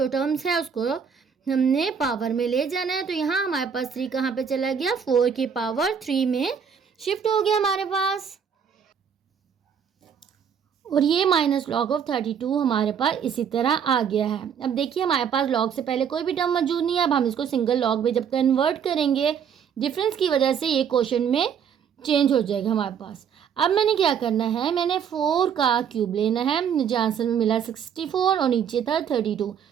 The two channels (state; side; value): quieter; left; 7.5 dB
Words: टर्म्स है उसको हमने पावर में ले जाना है। तो यहाँ हमारे पास 3 कहाँ पे चला गया, 4 की पावर 3 में शिफ्ट हो गया हमारे पास। और ये माइनस लॉग ऑफ 32 हमारे पास इसी तरह आ गया है। अब देखिए हमारे पास लॉग से पहले कोई भी टर्म मौजूद नहीं है। अब हम इसको सिंगल लॉग में जब कन्वर्ट करेंगे डिफरेंस की वजह से ये क्वेश्चन में चेंज हो जाएगा हमारे पास। अब मैंने क्या करना है, मैंने 4 का क्यूब लेना है, मुझे आंसर में मिला 64 और नीचे था 32।